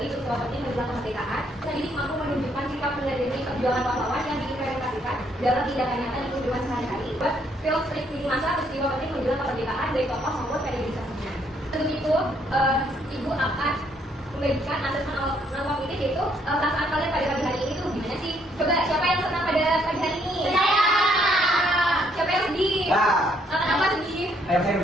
peristiwa penting menjelang kemerdekaan, dan jadi mampu menunjukkan sikap menyadari perjuangan pahlawan yang diimplementasikan dalam tindakan nyata di kehidupan sehari-hari. Buat film strip di masa peristiwa penting menjelang kemerdekaan dari tokoh maupun periodisasinya. Untuk itu, Ibu akan membagikan asesmen normatif, yaitu perasaan kalian pada pagi hari ini tuh gimana sih? Coba siapa yang senang pada pagi hari ini? Saya. Siapa yang sedih? Kenapa sedih? Ayo saya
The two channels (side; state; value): both; normal; correlation 0.69